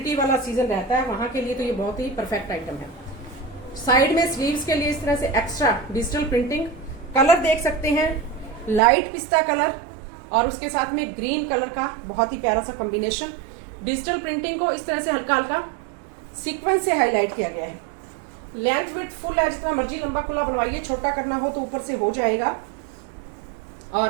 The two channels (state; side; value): drops out; left; at 8.8 s